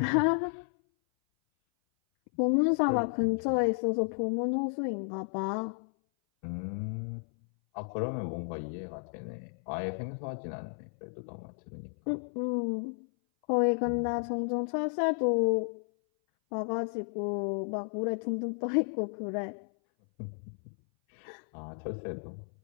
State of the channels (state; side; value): silent; right; 56 dB below the other